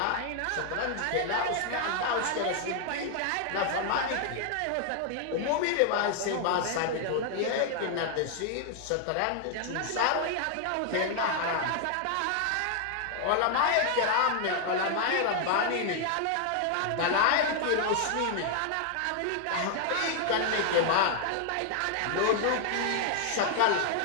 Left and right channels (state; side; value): different; both; correlation 0.00